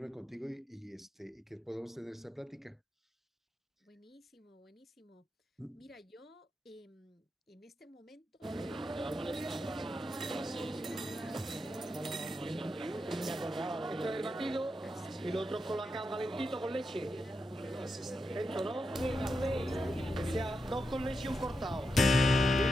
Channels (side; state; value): both; normal; correlation 0.86